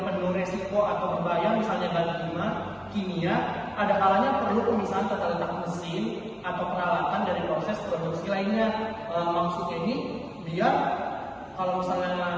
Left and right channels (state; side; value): identical; both; correlation 1.00